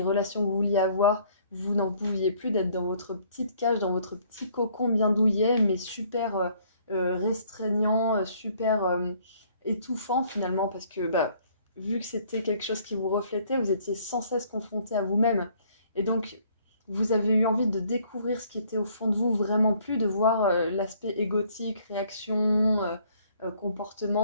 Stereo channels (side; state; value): both; inverted; correlation -0.61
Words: relations que vous vouliez avoir. Vous n'en pouviez plus d'être dans votre petite cage, dans votre petit cocon bien douillet, mais super restreignant, super étouffant finalement parce que bah, vu que c'était quelque chose qui vous reflétait, vous étiez sans cesse confronté à vous-même. Et donc, vous avez eu envie de découvrir ce qui était au fond de vous, vraiment plus de voir l'aspect égotique, réaction,